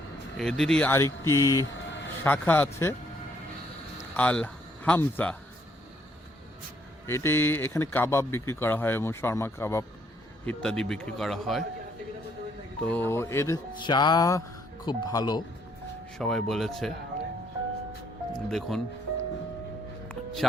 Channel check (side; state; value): both; normal; correlation 0.68